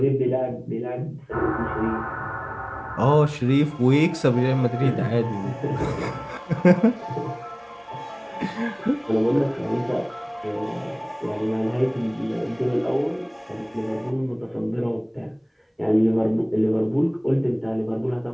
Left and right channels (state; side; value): identical; both; correlation 1.00